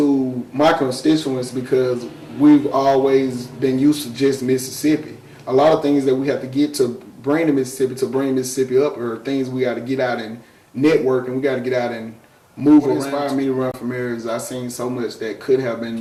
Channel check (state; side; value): identical; both; correlation 1.00